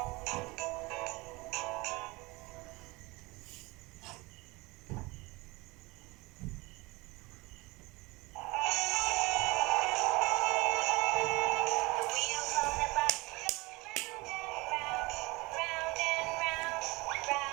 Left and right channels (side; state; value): left; quieter; 23.6 dB